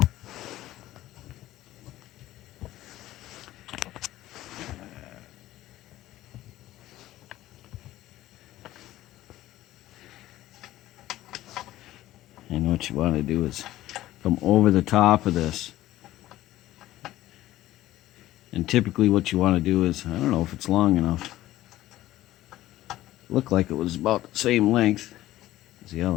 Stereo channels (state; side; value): quieter; right; 15.2 dB